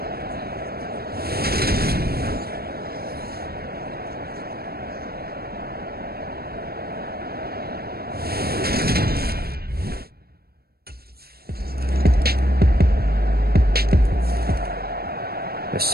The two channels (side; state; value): left; late; 0.45 ms